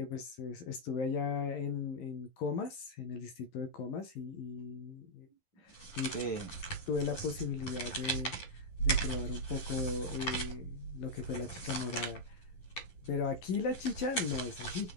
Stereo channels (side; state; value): right; late; 11 ms